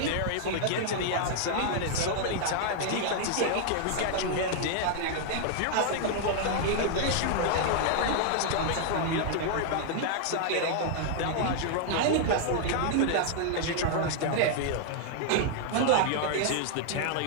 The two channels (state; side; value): different; both; correlation -0.01